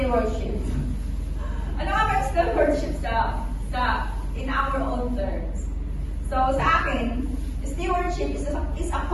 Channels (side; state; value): both; identical; correlation 1.00